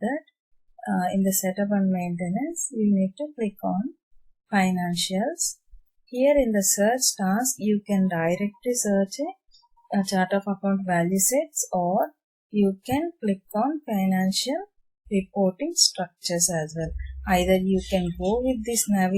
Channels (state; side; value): identical; both; correlation 1.00